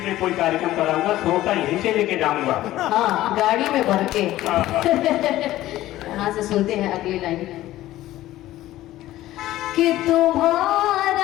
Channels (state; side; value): quieter; right; 15.1 dB